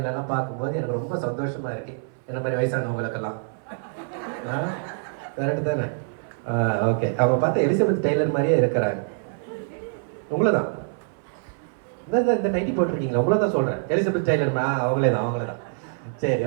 பார்க்கும்போது எனக்கு ரொம்ப சந்தோஷமா இருக்கு. என்ன மாதிரி வயசானவங்களுக்கெல்லாம். கரெக்ட் தானே? ஓகே. அவங்க பார்த்தா எலிசபெத் டெய்லர் மாதிரியே இருக்கிறாங்க. உங்களை தான் இந்த நைட்டி போட்டிருக்கீங்களா? உங்களை தான் சொல்றேன். எலிசபெத் டெய்லர் அவங்களே தான். சரி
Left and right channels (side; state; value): left; silent; 59 dB below the other